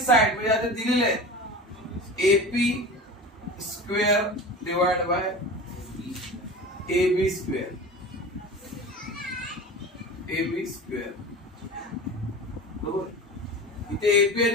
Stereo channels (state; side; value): normal; both; correlation 0.33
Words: म्हणजे आता दिलेले आहे AP square divide by AB square, AB square बरोबर. इथे एपी